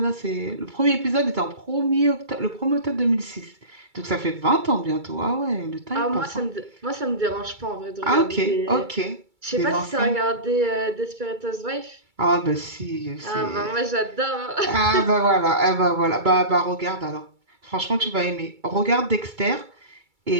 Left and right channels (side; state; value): left; late; 2.3 ms